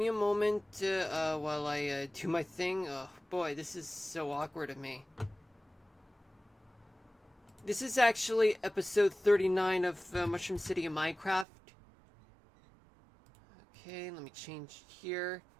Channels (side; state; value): left; drops out; at 11.5 s